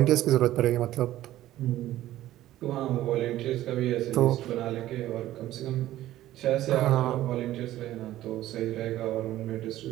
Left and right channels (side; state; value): left; quieter; 14.3 dB